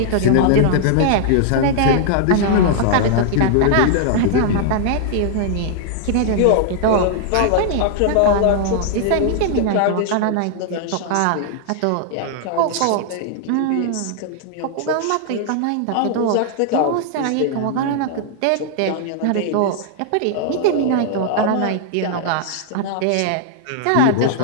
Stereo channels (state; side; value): different; both; correlation -0.01